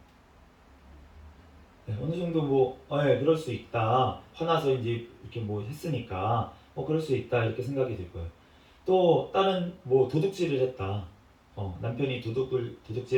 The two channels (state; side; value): identical; both; correlation 1.00